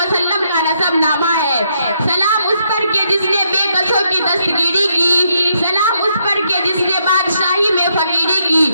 का नसब नामा है। सलाम उस पर के जिसने बेकसों की दस्तगीरी की, सलाम उस पर के जिसने बादशाही में फकीरी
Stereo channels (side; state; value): both; inverted; correlation -0.76